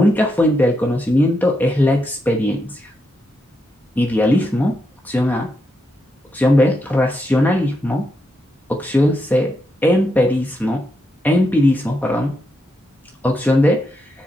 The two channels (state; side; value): normal; both; correlation 0.83